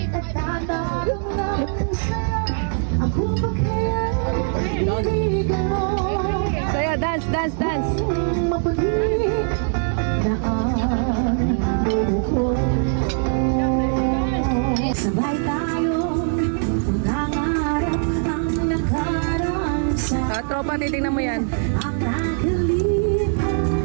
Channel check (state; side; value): silent; left; 64 dB below the other